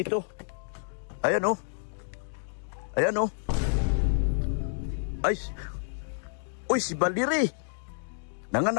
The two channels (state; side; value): silent; right; digital silence